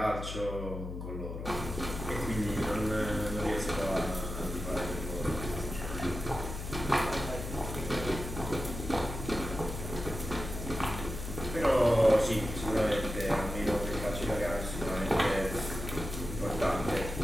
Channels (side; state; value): left; noise; hum, 7 dB below the sound